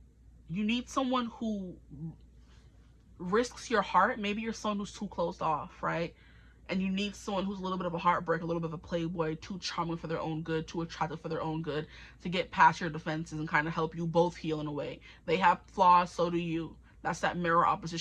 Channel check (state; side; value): identical; both; correlation 1.00